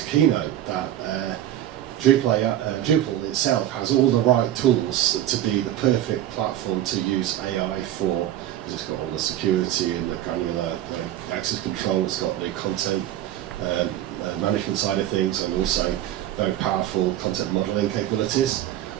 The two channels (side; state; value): left; quieter; 12.5 dB